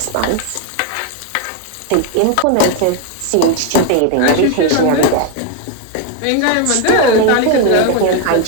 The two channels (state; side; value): different; both; correlation 0.01